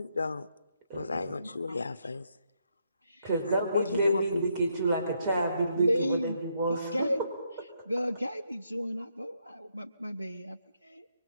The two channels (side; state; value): both; inverted; correlation -0.76